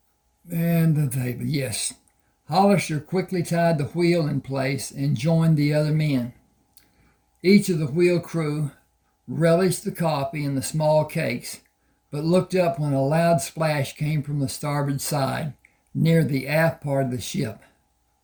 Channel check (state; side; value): identical; both; correlation 1.00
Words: the table, yes. Hollister quickly tied the wheel in place and joined the other men. Each of the wheel crew relished the coffee and the small cakes, but looked up when a loud splash came from the starboard side, near the aft part of the ship.